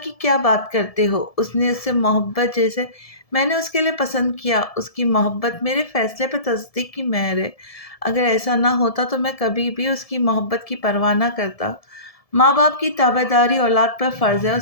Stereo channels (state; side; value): late; right; 1.7 ms